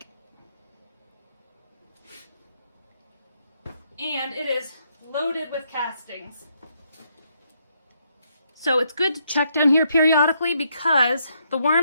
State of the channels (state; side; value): inverted; both; correlation -0.75